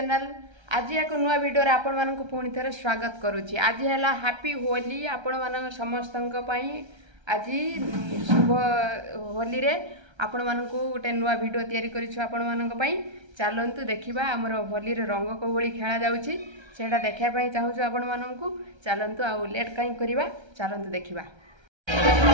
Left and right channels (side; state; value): left; late; 1.3 ms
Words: आज एक नुआ वीडियो रे आपण मानक पुणी थे स्वागत करुच्ची। आज है हैप्पी होली आपण मान समस्त आज शुभ होली रे आपण मानक गोटे नुआ वीडियो तैयारी करिछु आपण मानक पई। चलंतु देखिबा हमर होली रे रंग को भली खेला जाउची सेटा देखिया पई चाहूछु आपण मानक। चलंतु आ लेट काई करबा, चलंतु देखिबा।